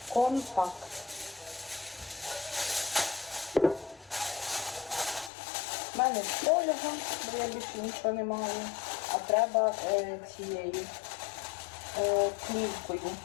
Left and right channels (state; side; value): drops out; right; at 5.3 s